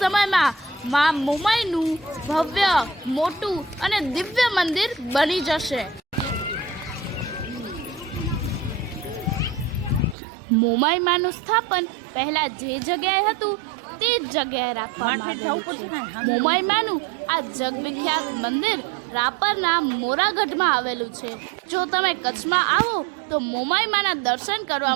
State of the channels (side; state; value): left; drops out; at 10.2 s